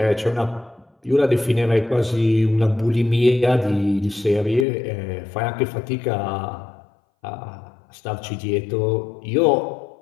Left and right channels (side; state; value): right; drops out; at 4.7 s